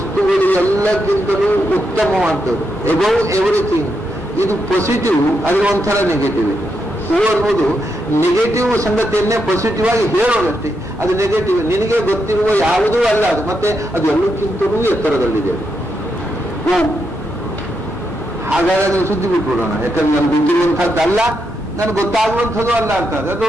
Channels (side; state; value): both; normal; correlation 0.82